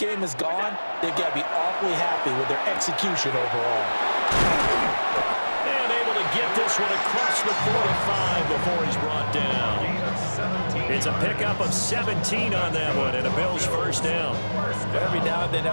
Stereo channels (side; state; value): both; inverted; correlation -1.00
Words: has gone, they've got to be awfully happy with their execution overall. And able to get this one across the 45 before he's brought down. It's a pickup of 17 on that one, and a Bills first down. But every now and then